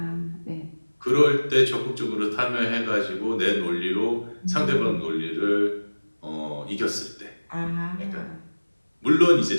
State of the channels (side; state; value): both; inverted; correlation -1.00